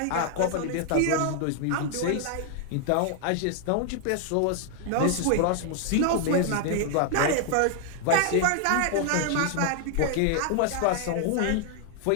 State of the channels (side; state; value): both; different; correlation 0.00